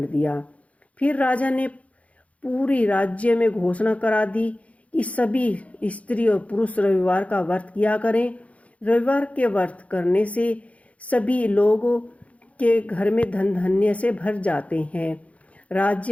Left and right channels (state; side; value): late; right; 0.066 ms